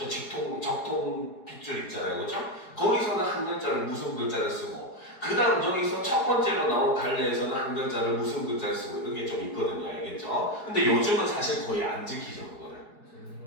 적통 핏줄 있잖아요. 그렇죠? 거기서는 학년자를 무슨 글자를 쓰고 그 다음 여기서 첫 번째로 나온 갈래에서는 한 글자를 무슨 글자를 쓰고 이게 좀 있거든요. 알겠죠? 근데 요즘은 사실 거의 안 지키죠, 그거를. 저는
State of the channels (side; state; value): right; late; 4.7 ms